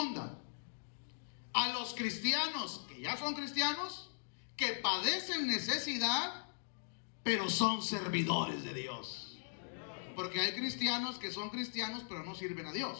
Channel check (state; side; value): silent; right; digital silence